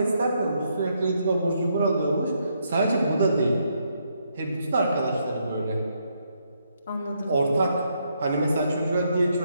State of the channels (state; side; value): inverted; both; correlation -0.76